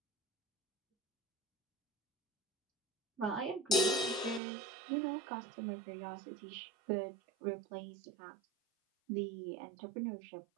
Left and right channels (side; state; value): left; drops out; at 4.4 s